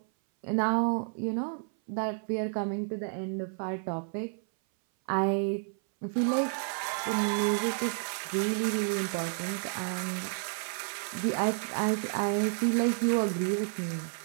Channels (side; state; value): left; silent; 57 dB below the other